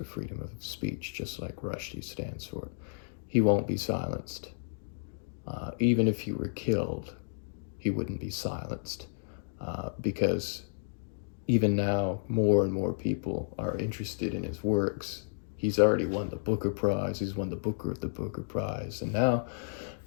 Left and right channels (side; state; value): right; silent; digital silence